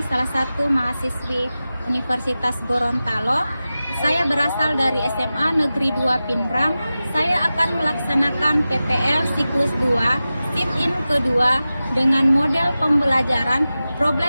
salah satu mahasiswi Universitas Gorontalo. Saya berasal dari SMA Negeri 2 Pinrang. Saya akan melaksanakan PPL siklus 2, Fit-in kedua dengan model pembelajaran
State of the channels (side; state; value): both; inverted; correlation -0.95